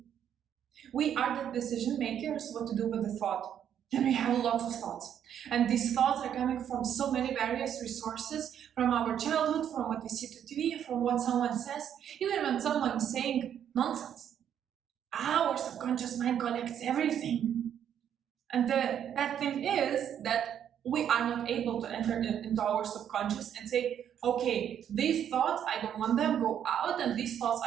We are the decision makers what to do with the thought. And we have lots of thoughts. And these thoughts are coming from so many various resources, from our childhood, from what we see to TV, from what someone says, even when someone is saying nonsense. Our subconscious mind collects everything. And the bad thing is that we are not able to enter into our subconscious and say, okay, these thoughts, I don't want them, go out, and these thoughts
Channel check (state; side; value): quieter; left; 9.4 dB